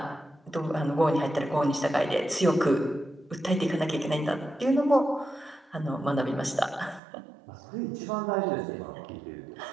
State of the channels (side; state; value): left; drops out; at 7.0 s